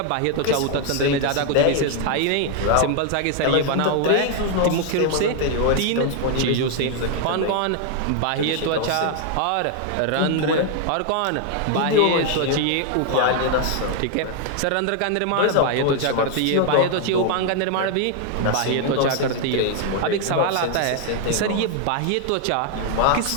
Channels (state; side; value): different; both; correlation 0.00